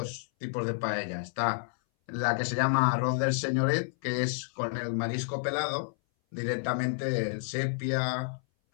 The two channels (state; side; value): silent; right; 58 dB below the other